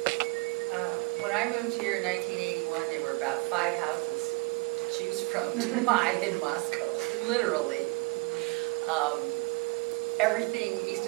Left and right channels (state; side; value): quieter; left; 25.1 dB